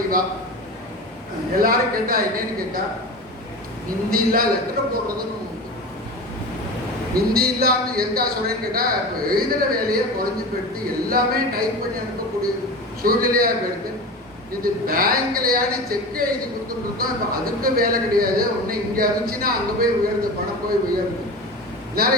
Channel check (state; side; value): normal; both; correlation 0.29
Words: எல்லாரும் கேட்டா என்னன்னு கேட்டா, ஹிந்தில லெட்டர் போடுறதுன்னு ஹிந்தி இல்லாமல் எதுக்காக சொல்றேன்னு கேட்டால் இப்போ எழுதுகிற வேலையை குறைஞ்சி போயிடுது, எல்லாமே டைப் பண்ணி அனுப்பக்கூடிய சூழ்நிலையாக போயிடுது. இது பேங்க்லையான செக்கை எழுதி கொடுத்துருக்கோம், இப்போ அதுக்கு வேலை கிடையாது. ஒன்று இங்கே இருந்துச்சுன்னா அங்கே போய் உயர்ந்து பணம் போய் உயர்ந்து